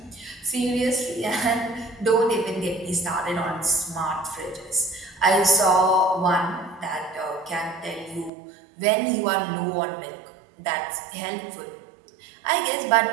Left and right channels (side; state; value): left; drops out; at 8.3 s